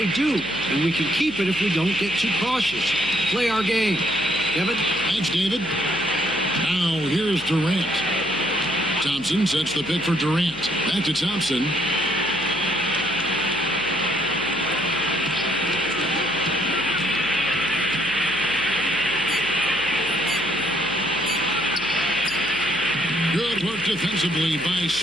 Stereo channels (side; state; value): left; noise; hum, 20 dB below the sound